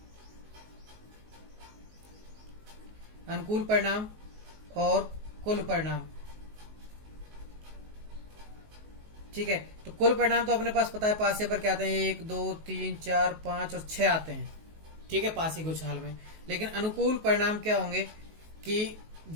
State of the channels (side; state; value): left; late; 19 ms